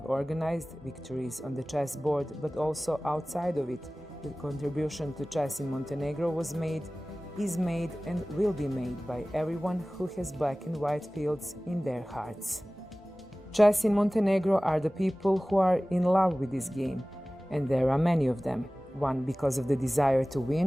organized, victories on the chessboard, but also outside of it, the contribution to chess in Montenegro was made, is made, and will be made by everyone who has black and white fields in their hearts. Chess in Montenegro are the people who are in love with this game, and there are many of them, one because of the desire to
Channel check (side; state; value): both; normal; correlation 0.98